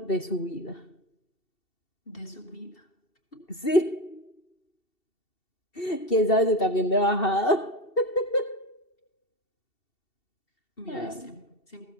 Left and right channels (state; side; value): late; right; 2.7 ms